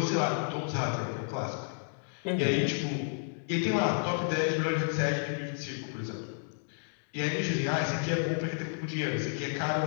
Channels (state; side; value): silent; right; digital silence